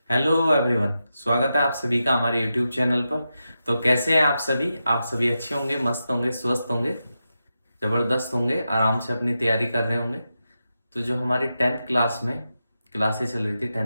Hello everyone, स्वागत है आप सभी का हमारे यूट्यूब चैनल पर। तो कैसे हैं आप सभी? आप सभी अच्छे होंगे, मस्त होंगे, स्वस्थ होंगे, जबरदस्त होंगे, आराम से अपनी तैयारी कर रहे होंगे। तो जो हमारी 10th क्लास में क्लासें चल रही थी,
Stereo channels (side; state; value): both; inverted; correlation -0.89